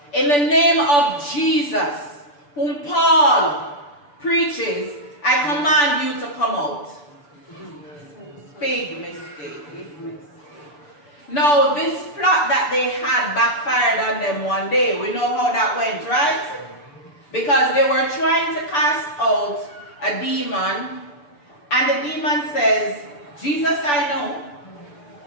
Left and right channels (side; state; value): right; late; 6.9 ms